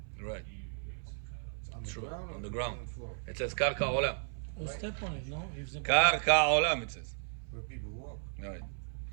Right. It's on the True. ground or On the ground. on the floor? It says karka olam. Or step on it, no? If the Karka olam, it says. Where people walk. Right.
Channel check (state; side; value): silent; left; 55 dB below the other